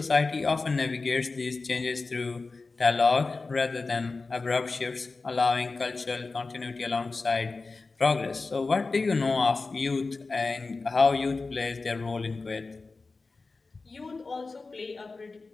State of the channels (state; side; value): quieter; right; 3.9 dB